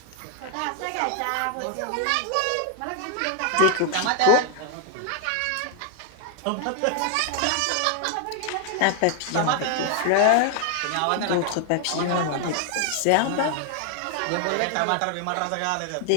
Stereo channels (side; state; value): both; different; correlation 0.00